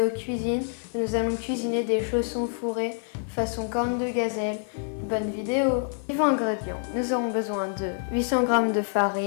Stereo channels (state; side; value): silent; right; digital silence